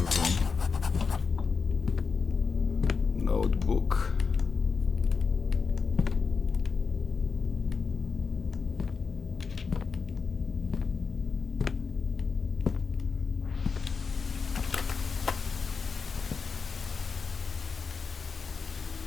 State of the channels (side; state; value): right; quieter; 5.2 dB